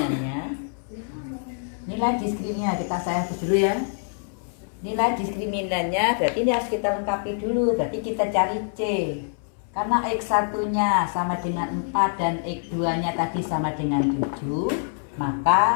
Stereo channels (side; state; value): right; silent; 62 dB below the other